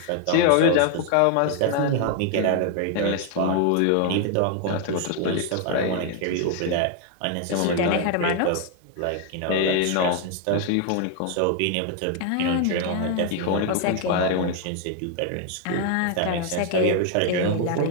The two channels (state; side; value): different; both; correlation 0.00